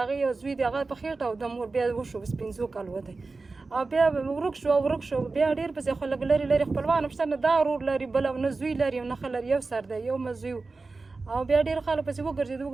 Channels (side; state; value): left; quieter; 3.8 dB